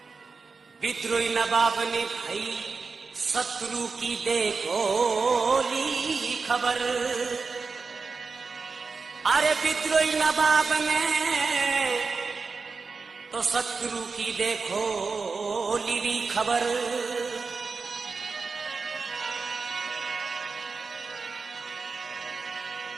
विद्रोही नवाब ने भाई शत्रु की देखो ली खबर। अरे विद्रोही नवाब ने तो शत्रु की देखो ली खबर।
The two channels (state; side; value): quieter; left; 4.6 dB